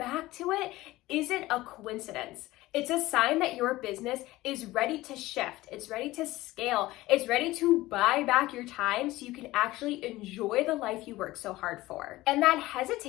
to it isn't a coincidence. It's a sign that your business is ready to shift. It's ready to scale. It's ready to buy back your time so you can actually enjoy the life you work so hard for. And that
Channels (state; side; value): quieter; right; 18.0 dB